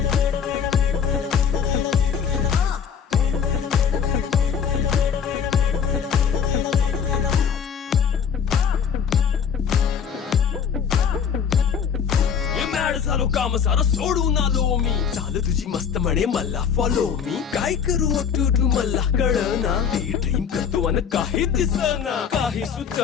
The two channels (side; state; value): right; quieter; 7.3 dB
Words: झालो काम सारं सोडून आलो मी चाल तुझी मस्त म्हणे मला फॉलो मी काय करू टू मला कळना ती ड्रीम करतो अन काही दिसना काही